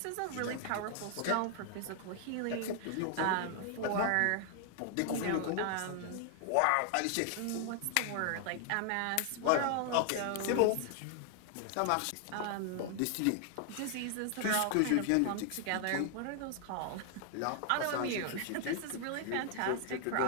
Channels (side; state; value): both; different; correlation 0.00